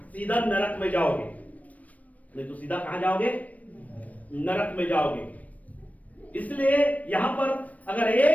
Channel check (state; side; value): late; right; 0.070 ms